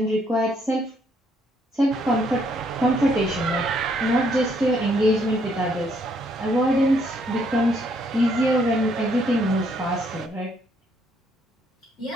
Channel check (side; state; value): both; normal; correlation 0.70